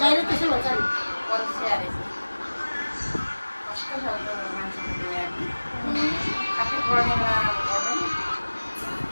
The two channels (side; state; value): both; inverted; correlation -1.00